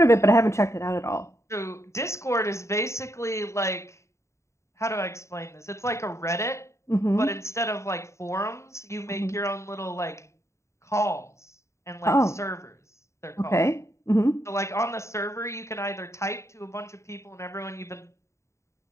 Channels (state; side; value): late; right; 0.14 ms